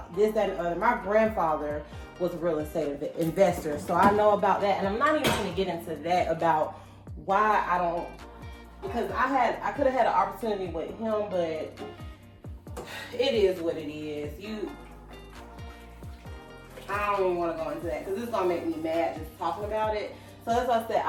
this, that, and other. My grandfather was a real estate investor, so I know about that. And I'm not even going to get into that about why I don't, because I could have had an opportunity with him, but it is what it is. I don't even want to go into that, because it's going to make me mad just talking about it. So that's why I said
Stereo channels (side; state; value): both; identical; correlation 1.00